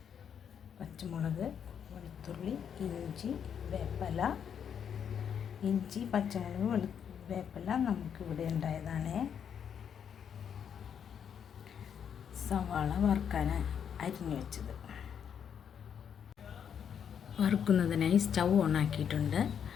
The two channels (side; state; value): right; quieter; 8.0 dB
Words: പച്ചമുളക്, വെളുത്തുള്ളി, ഇഞ്ചി, വേപ്പില. ഇഞ്ചി, പച്ചമുളക്, വേപ്പില നമുക്കിവിടെ ഉണ്ടായതാണ്. സവാള വറുക്കാൻ അരിഞ്ഞു വെച്ചത്. വറുക്കുന്നതിനായി സ്റ്റൗ ഓണാക്കിയിട്ടുണ്ട്.